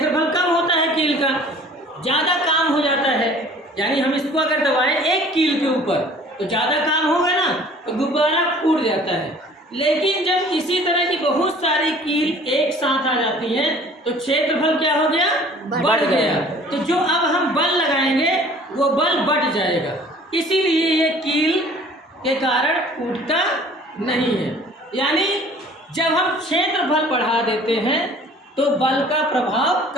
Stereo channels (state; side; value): normal; both; correlation 0.50